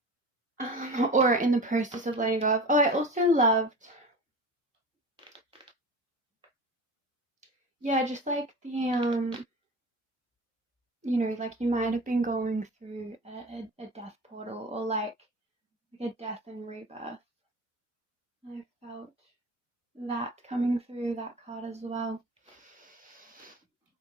of. Or in the process of letting go of. Oh, I also loved, just like the, like you might have been going through a death portal or like a death and rebirth. I felt that coming through that card as well.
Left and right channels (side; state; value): both; normal; correlation 0.34